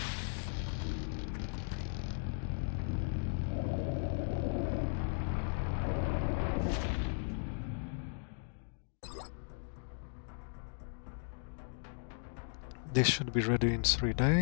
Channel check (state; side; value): silent; right; digital silence